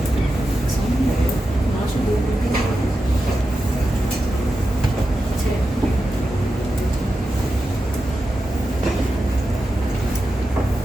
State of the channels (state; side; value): normal; both; correlation 0.90